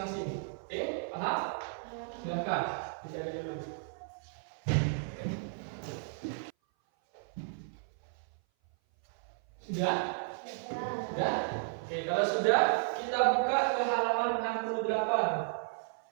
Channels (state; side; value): silent; left; 55 dB below the other